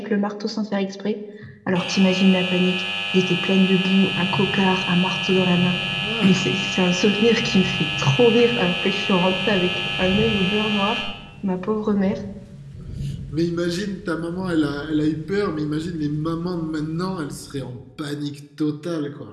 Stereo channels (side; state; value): both; identical; correlation 1.00